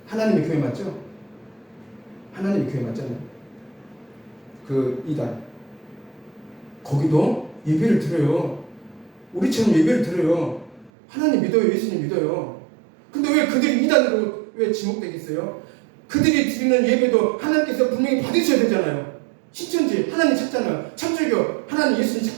하나님의 교회 맞죠? 하나님의 교회 맞잖아요. 그 이단. 거기도 예배를 드려요. 우리처럼 예배를 드려요. 하나님 믿어요. 예수님 믿어요. 근데 왜 그들이 이단으로 왜 지목되겠어요? 그들이 드리는 예배도 하나님께서 분명히 받으셔야 되잖아요. 신천지 하나님 찾잖아요. 천주교 하나님 예수님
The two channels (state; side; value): drops out; left; at 10.9 s